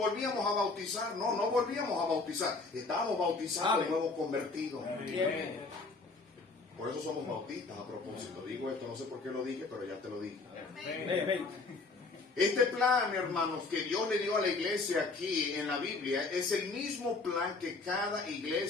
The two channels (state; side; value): quieter; right; 3.8 dB